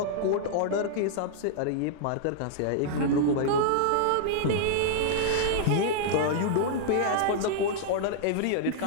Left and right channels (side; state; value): both; different; correlation -0.01